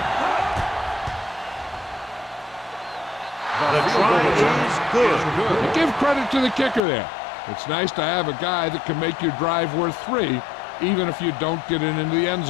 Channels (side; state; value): right; drops out; at 6.8 s